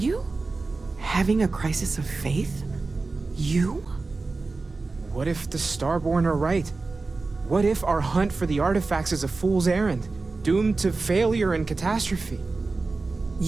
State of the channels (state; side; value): quieter; left; 3.7 dB